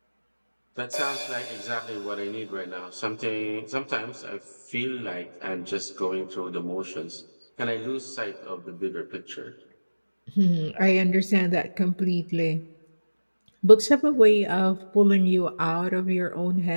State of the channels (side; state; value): both; inverted; correlation -1.00